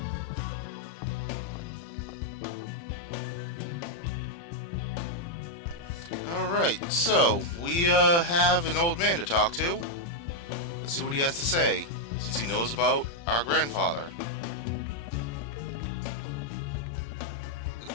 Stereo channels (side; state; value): right; late; 35 ms